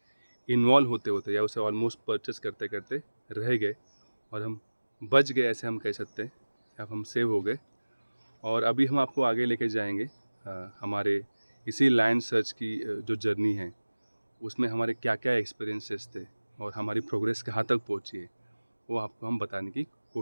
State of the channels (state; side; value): inverted; both; correlation -1.00